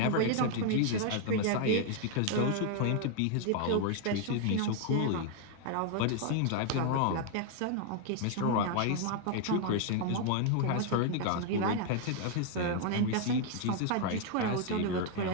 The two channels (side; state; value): both; different; correlation 0.00